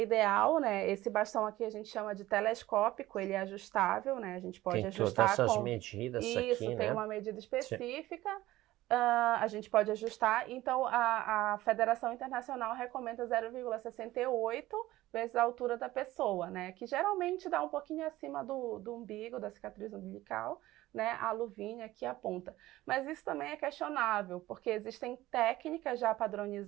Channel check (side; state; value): left; quieter; 16.6 dB